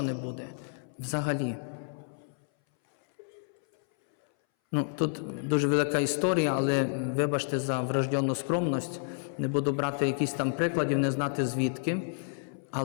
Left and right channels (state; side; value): silent; right; 58 dB below the other